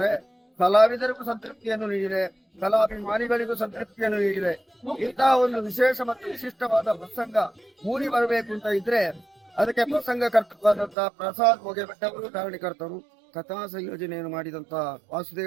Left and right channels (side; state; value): left; drops out; at 11.0 s